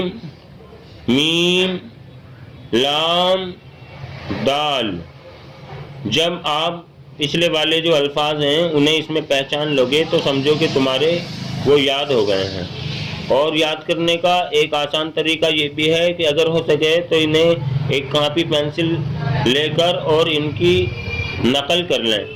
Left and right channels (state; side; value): identical; both; correlation 1.00